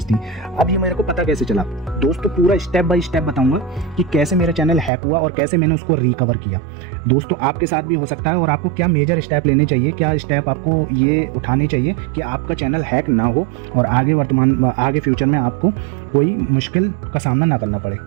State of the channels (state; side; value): drops out; left; at 4.9 s